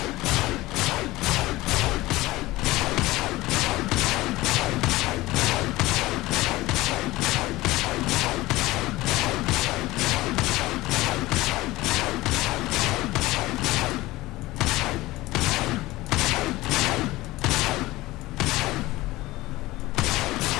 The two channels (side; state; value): right; quieter; 18.8 dB